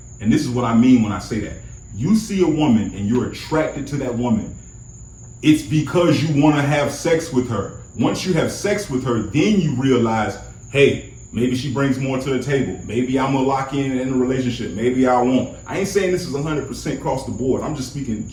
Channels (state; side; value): identical; both; correlation 1.00